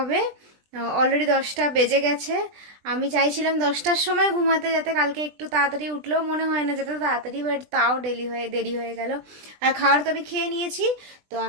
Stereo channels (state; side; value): late; left; 20 ms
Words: অলরেডি 10টা বেজে গেছে। আমি চাইছিলাম 10টার সময় ঘুমাতে, যাতে কালকে একটু তাড়াতাড়ি উঠলেও মনে হয় না যেতে তাড়াতাড়ি, বাট তাও দেরি হয়ে গেল। আর খাবার তো আমি খেয়ে নিয়েছি। তো